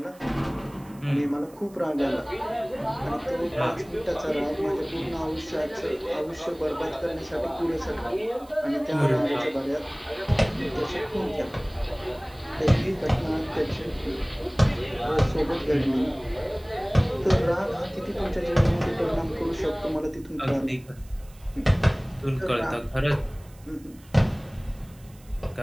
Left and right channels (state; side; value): noise; right; hiss, 26 dB below the sound